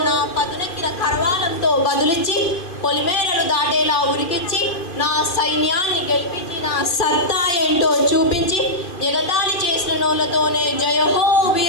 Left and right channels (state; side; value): late; right; 2.5 ms